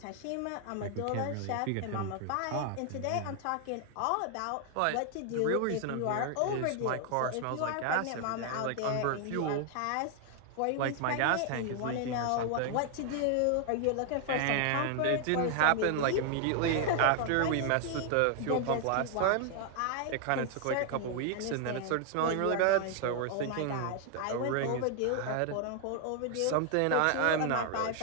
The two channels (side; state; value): both; different; correlation 0.00